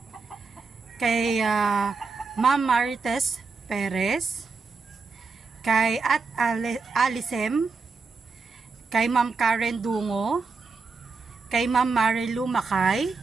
kay Ma'am Marites Perez, kay at Alisem, kay Ma'am Karen Dungo, kay Ma'am Marilu Makay,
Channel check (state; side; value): quieter; left; 4.5 dB